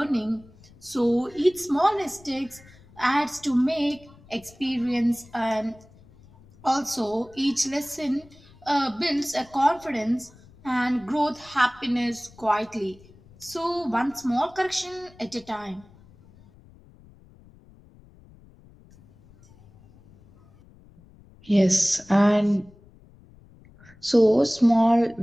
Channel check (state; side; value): noise; left; rumble, 25 dB below the sound